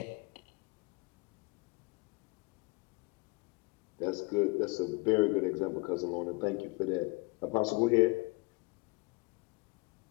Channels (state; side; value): quieter; right; 27.9 dB